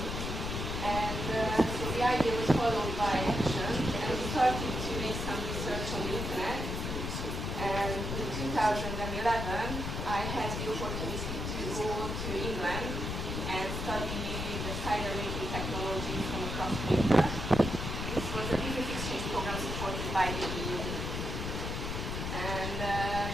And so the idea was followed by action, and we started to make some research on the internet. And in 2011, I had the opportunity to go to England and study the cider making technology from a cross-maker. This was a business exchange program supported by the EU. And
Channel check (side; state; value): left; noise; rumble, 3 dB below the sound